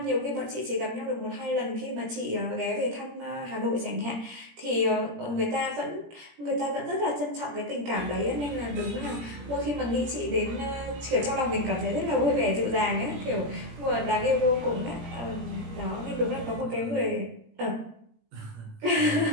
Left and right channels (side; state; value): left; late; 17 ms